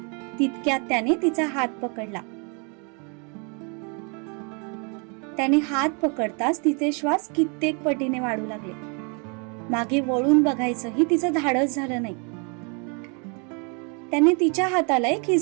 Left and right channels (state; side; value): quieter; left; 35.7 dB